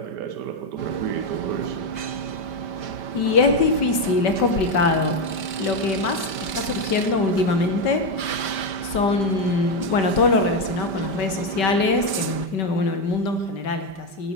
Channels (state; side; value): late; right; 5.1 ms